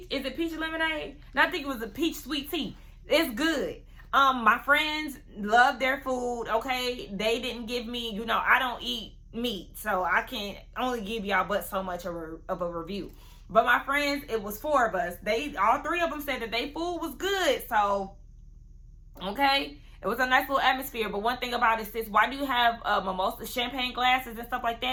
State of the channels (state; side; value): identical; both; correlation 1.00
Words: Is it peach lemonade? No, I think it was a peach sweet tea. It's good. My friends love their food, okay? They didn't give me, you know, I don't eat meat, so I can only give y'all but so much of a review. But my friends, it was 4 of us. All 3 of them said that their food was good, so, okay? It was a nice little atmosphere. But one thing about it, sis, why do you have mimosa champagne glasses and stuff like